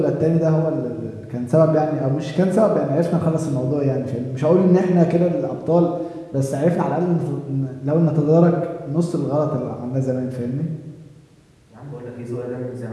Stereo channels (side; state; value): both; identical; correlation 1.00